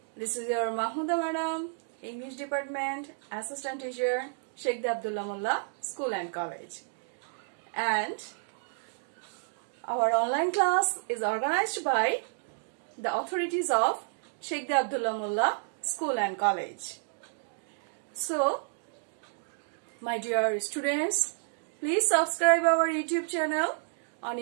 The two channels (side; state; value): left; silent; digital silence